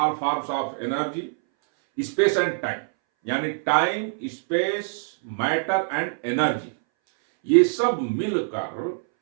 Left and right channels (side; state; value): left; silent; 61 dB below the other